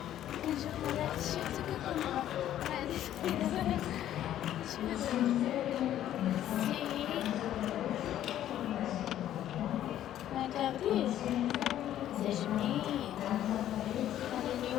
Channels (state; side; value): quieter; right; 11.8 dB